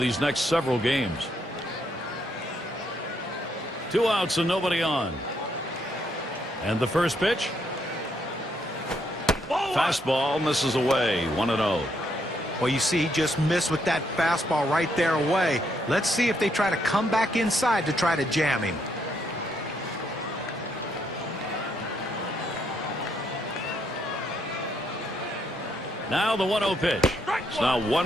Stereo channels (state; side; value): normal; both; correlation 0.74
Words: next several games. 2 outs and nobody on. And the first pitch. Fastball misses away. 1-0. Well, you see, he just missed with that fastball right there away. Let's see if they try to come back inside to try to jam him. Now the 1-0 pitch. It's now 1